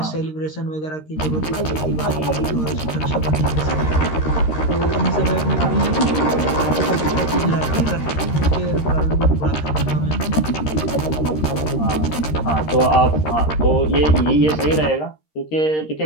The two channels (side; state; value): right; late; 13 ms